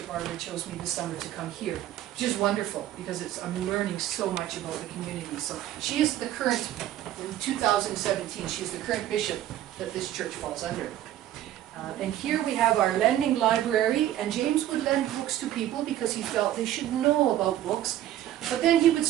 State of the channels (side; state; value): left; quieter; 12.7 dB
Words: Barbara chose me this summer to come here, which is wonderful because I'm learning so much about the community. So she is the current, in 2017, she is the current bishop that this church falls under. And here we have our lending library, and James would lend books to people because he felt they should know about books. But then he would